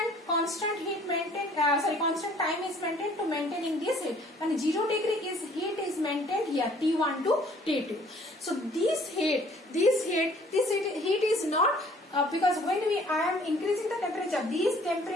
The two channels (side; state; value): both; normal; correlation 0.57